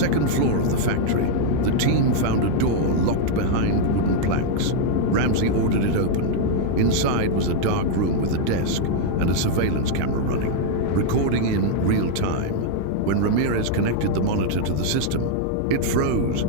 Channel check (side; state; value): both; different; correlation 0.00